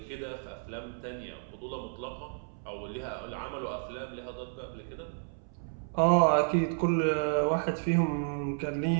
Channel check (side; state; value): left; silent; 57 dB below the other